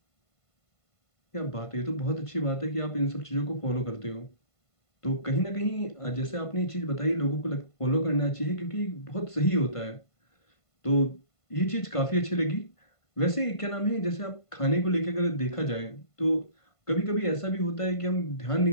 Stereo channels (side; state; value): right; late; 1.5 ms